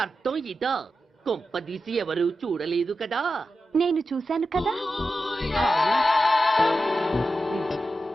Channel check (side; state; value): both; normal; correlation 0.90